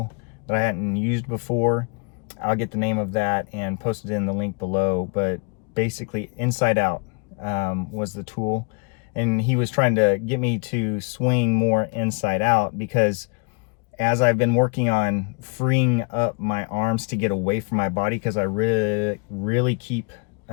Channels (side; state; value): right; quieter; 34.2 dB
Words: that I hadn't used before. I'll get the name of that and post it in the link below, but basically Inside Out was the tool, and he was trying to get me to swing more inside out because as I've been working on freeing up my arms to get away from my body, because I really keep